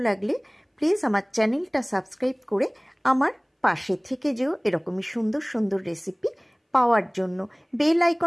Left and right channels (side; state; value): both; identical; correlation 1.00